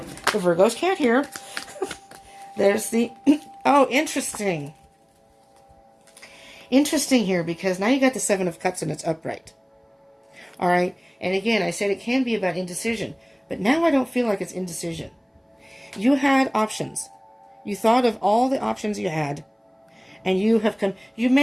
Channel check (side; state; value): both; identical; correlation 1.00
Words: the Virgos can't hear. There's the, oh, interesting. Interesting here, because now you got the Seven of Cups and it's upright. All right. And again, I said it can be about indecision, but now I don't feel like it's indecision. You had options. You thought of all the options you had, and you have come,